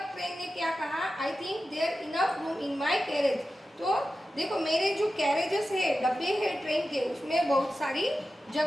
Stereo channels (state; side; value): normal; both; correlation 0.92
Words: ट्रेन ने क्या कहा, I think there enough room in my carriage. तो देखो मेरे जो कैरेजेस है, डब्बे है ट्रेन के, उसमें बहुत सारी